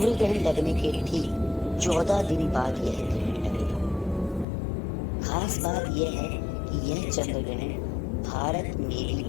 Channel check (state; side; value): drops out; right; at 4.5 s